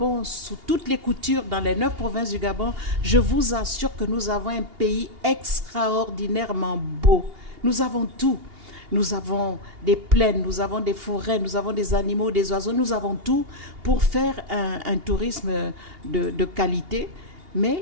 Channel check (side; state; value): left; late; 2.8 ms